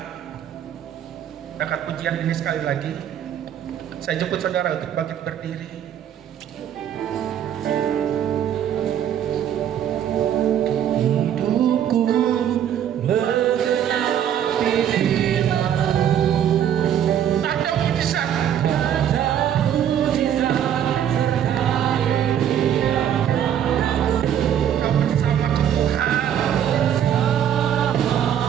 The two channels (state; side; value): quieter; left; 9.8 dB